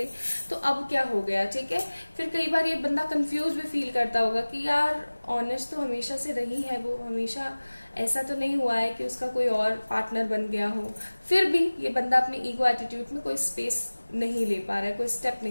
तो अब क्या हो गया, ठीक है। फिर कई बार ये बंदा कंफ्यूज भी फील करता होगा कि यार ऑनेस्ट तो हमेशा से रही है वो, हमेशा ऐसा तो नहीं हुआ है कि उसका कोई और पार्टनर बन गया हो। फिर भी ये बंदा अपनी ईगो एटीट्यूड में कोई स्पेस नहीं ले पा रहा है, कोई स्टेप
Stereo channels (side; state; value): both; inverted; correlation -1.00